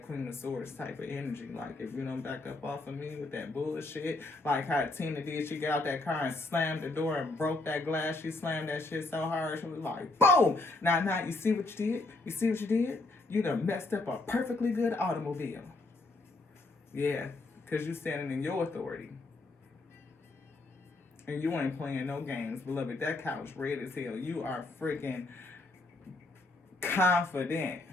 Queen of Swords type of energy. Like, if you don't back up off of me with that bullshit, like how Tina did, she got out that car and slammed the door and broke that glass. She slammed that shit so hard, she was like, boom! Now, you see what you did? You see what you did? You done messed up a perfectly good automobile. Yeah, because you standing in your authority. And you ain't playing no games, beloved. That couch red as hell. You are freaking confident.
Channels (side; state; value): right; quieter; 3.1 dB